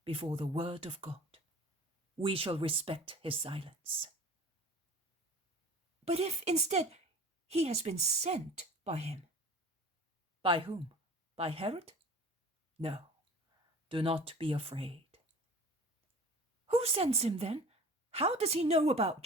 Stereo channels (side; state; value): both; normal; correlation 0.42